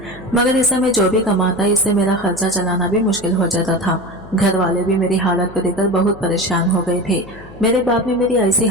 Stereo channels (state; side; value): noise; left; hum, 21 dB below the sound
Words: मगर इससे मैं जो भी कमाता इससे मेरा खर्चा चलाना भी मुश्किल हो जाता था। घर वाले भी मेरी हालत को देखकर बहुत परेशान हो गए थे। मेरे बाप ने मेरी ऐसी